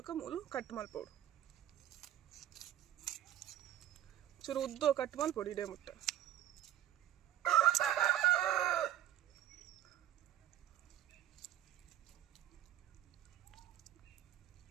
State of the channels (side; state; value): left; quieter; 12.5 dB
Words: ಮೂಲು ಕಟ್ ಮಲ್ಪೋಡು ಚೂರು ಉದ್ದೋ ಕಟ್ ಮಲ್ಪೋಡು ಇಡೇ ಮುಟ್ಟ